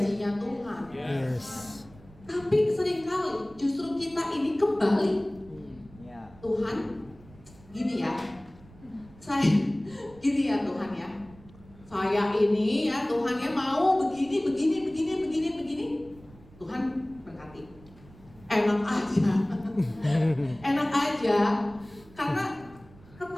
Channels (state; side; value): noise; right; rumble, 23 dB below the sound